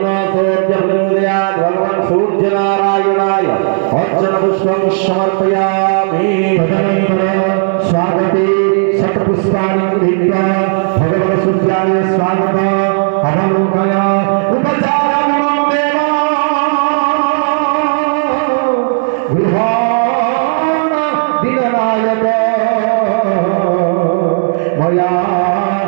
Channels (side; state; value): left; silent; digital silence